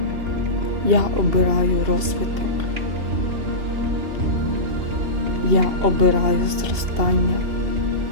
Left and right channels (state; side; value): late; left; 2.9 ms